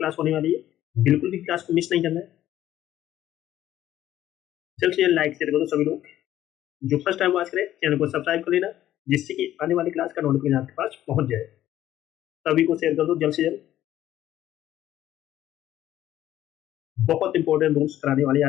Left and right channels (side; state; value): right; quieter; 12.8 dB